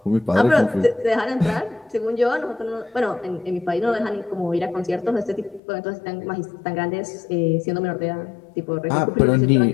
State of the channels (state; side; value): drops out; right; at 5.6 s